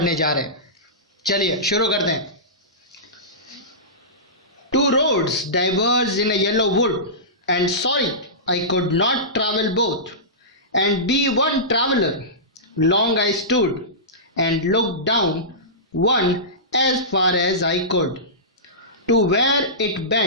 जा रहे हैं। चलिए शुरू करते हैं। Two roads diverged in a yellow wood, and sorry I could not travel both, and be one traveler. Long I stood and looked down one as far as I could, to where it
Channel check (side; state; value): both; normal; correlation -0.19